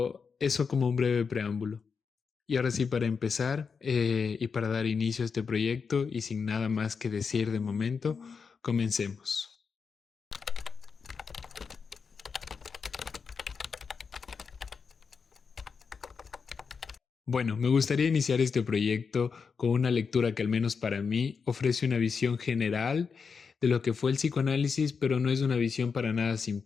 eso como un breve preámbulo. Y ahora sí, para empezar y para dar inicio a este proyecto y sin nada más que decir de momento, comencemos. Bueno, me gustaría iniciar este proyecto con una lectura que al menos para mí ofrece una visión general de lo que fue el psicoanálisis, pero no es una visión para nada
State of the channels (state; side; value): quieter; right; 5.6 dB